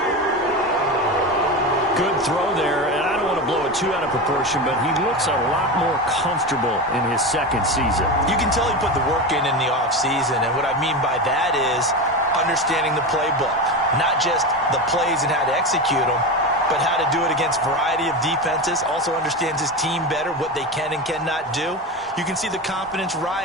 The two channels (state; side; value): normal; both; correlation 0.21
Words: Good throw there, and I don't want to blow it too out of proportion, but he looks a lot more comfortable in his second season. You can tell he put the work in the offseason, and what I mean by that is understanding the playbook, not just the plays and how to execute them, but how to do it against a variety of defenses. Also understands his team better, what they can and cannot do. You can see the confidence